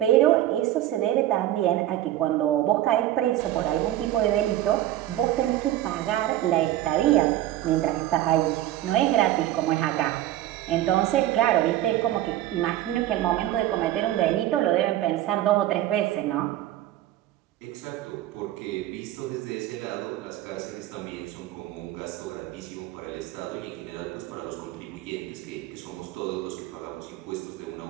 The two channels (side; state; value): left; quieter; 13.8 dB